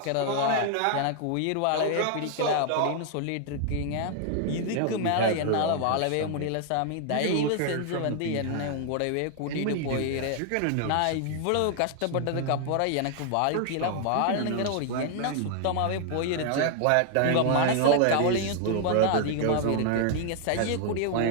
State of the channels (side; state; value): both; different; correlation 0.00